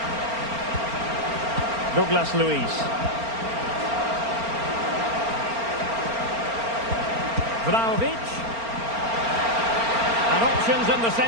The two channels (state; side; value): late; left; 4.4 ms